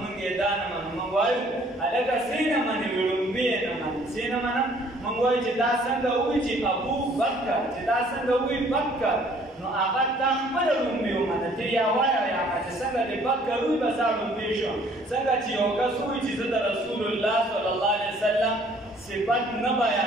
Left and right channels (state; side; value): normal; both; correlation 0.59